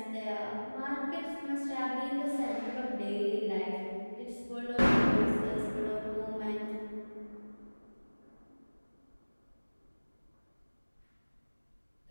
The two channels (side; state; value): both; inverted; correlation -1.00